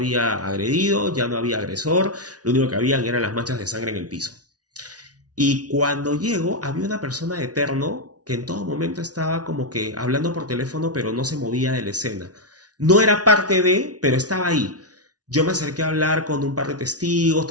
agredido, ya no había agresor, lo único que habían eran las manchas de sangre en el piso. Y cuando llego había una persona de terno que en todo momento estaba como que hablando por teléfono pero no se movía de la escena. No era parte de, pero estaba ahí. Yo me acerqué a hablar con un par de testigos,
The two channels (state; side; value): late; left; 0.68 ms